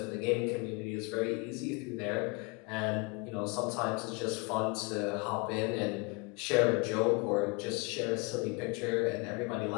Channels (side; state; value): right; quieter; 28.7 dB